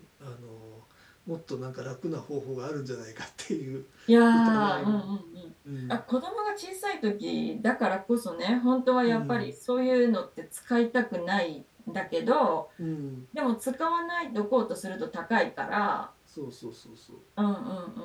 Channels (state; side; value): identical; both; correlation 1.00